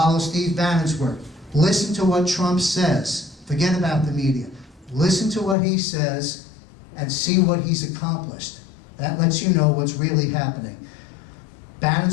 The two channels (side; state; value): right; drops out; at 5.6 s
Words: Steve Bannon's work. Listen to what Trump says. Forget about the media. Listen to what he says and see what he's accomplished. That lets you know what's really happening.